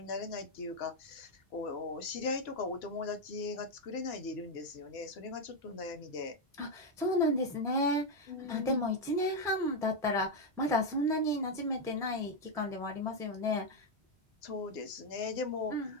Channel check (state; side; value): normal; both; correlation 0.04